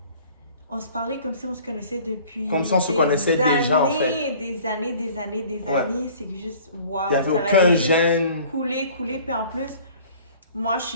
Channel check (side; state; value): both; inverted; correlation -0.50